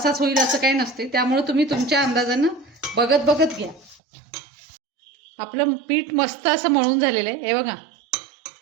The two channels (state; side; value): drops out; left; at 4.0 s